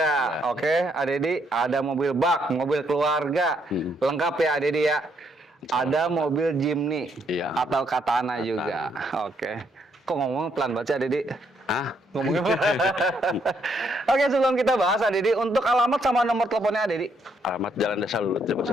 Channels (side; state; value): both; normal; correlation 0.73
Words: Ada. Oke, Dedi. Ada mobil bak, mobil keluarga. Lengkap ya, Dedi ya. Ada mobil Jimny. Iya. Atau Katana juga. Oke. Kok ngomong pelan banget sih, Dedi? Ah, Ngomongnya Oke, sebelum kita bahas, Dedi, untuk alamat sama nomor teleponnya, Dedi. alamat Jalan Desa Lulut ya, Mas